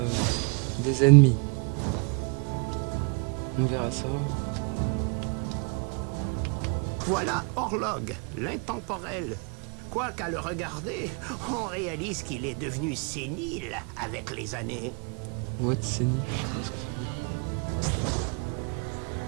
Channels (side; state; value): left; quieter; 35.7 dB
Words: des ennemis. On verra ça. Voilà Orlog, l'intemporel. Quoi qu'à le regarder, on réalise qu'il est devenu sénile avec les années. What c'est nif, je sais pas ce que ça veut dire.